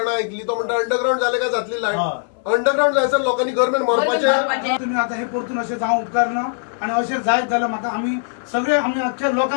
ऐकली तो म्हणटा अंडरग्राउंड झाले का जातली लायट. अंडरग्राउंड जायचं लोकांनी गव्हर्नमेंट मरपाचे. तुम्ही आता हे परतून असे जावं उपकार ना आणि असे जायत जाल्यार म्हाका आम्ही सगळे आम्ही अख्ख्या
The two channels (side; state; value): right; silent; digital silence